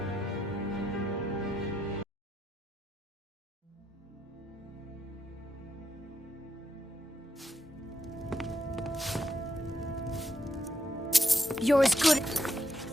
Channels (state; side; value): normal; both; correlation 0.80